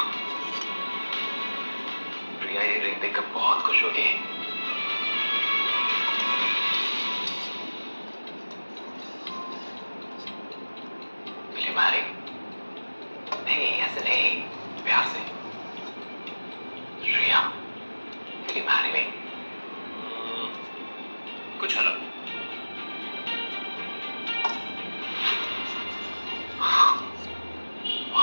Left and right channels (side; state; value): both; inverted; correlation -1.00